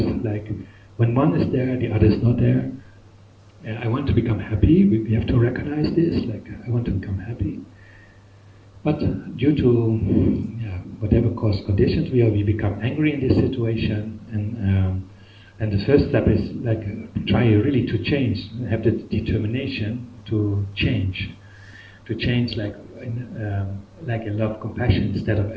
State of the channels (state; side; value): identical; both; correlation 1.00